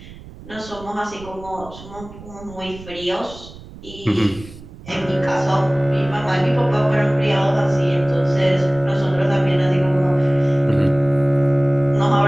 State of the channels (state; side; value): noise; right; rumble, 17 dB below the sound